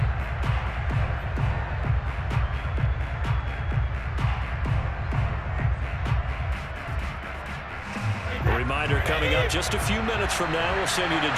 A reminder coming up just a few minutes from now. We'll send you to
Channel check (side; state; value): both; identical; correlation 1.00